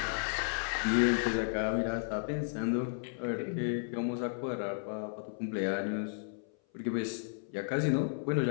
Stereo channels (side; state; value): right; silent; 55 dB below the other